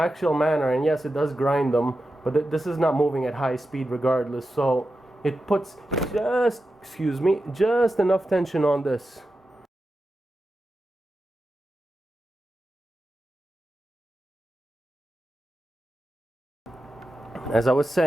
manner, and yes, it does grind them, but this is not moving at high speed regardless, so it puts just enough tension on this. As I was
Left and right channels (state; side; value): normal; both; correlation 0.91